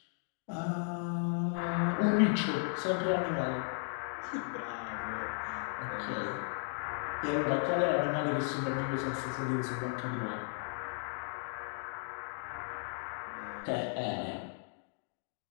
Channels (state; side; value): silent; right; 54 dB below the other